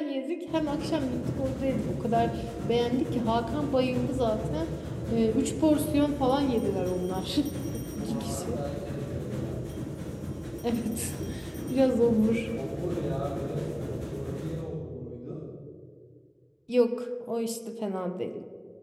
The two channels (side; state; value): both; identical; correlation 1.00